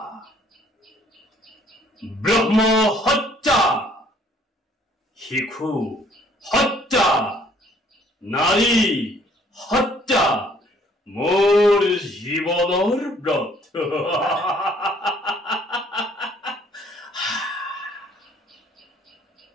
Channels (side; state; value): both; normal; correlation 0.61